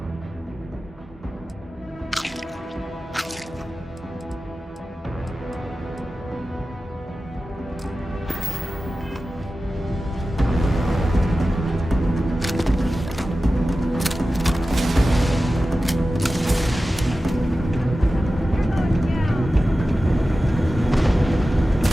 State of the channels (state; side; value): normal; both; correlation 0.94